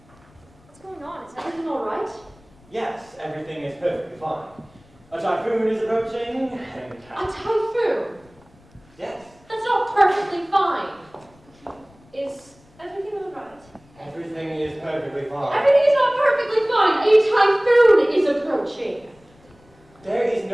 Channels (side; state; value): left; noise; rumble, 28 dB below the sound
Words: What's going on? Is everything all right? Yes, everything is perfectly fine. A typhoon is approaching, and A typhoon? yes, That's not perfectly fine. Is everything all right? everything is perfectly fine. Everything is not perfectly fine. A typhoon is approaching. There is